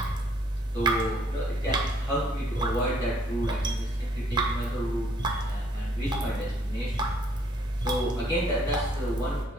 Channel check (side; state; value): both; normal; correlation 0.65